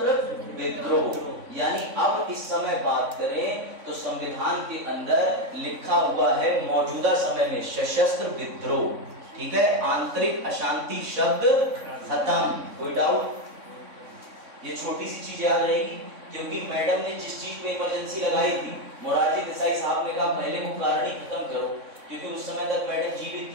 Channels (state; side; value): late; left; 3.6 ms